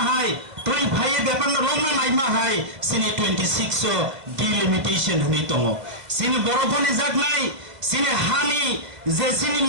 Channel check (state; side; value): late; left; 2.1 ms